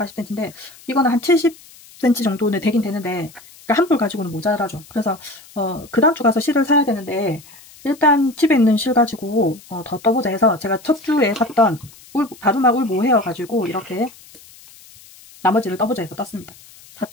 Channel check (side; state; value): left; noise; hiss, 23 dB below the sound